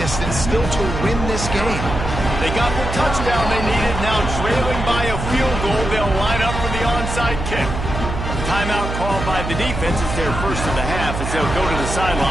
still to win this game. They got the touchdown they needed. Now trailing by a field goal, they'll line up for the onside kick. Timeout called by the defense is their first of the half as they'll go to the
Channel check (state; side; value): noise; right; hum, 5 dB below the sound